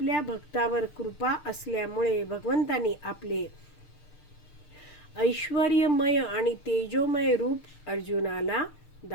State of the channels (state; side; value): late; right; 6.7 ms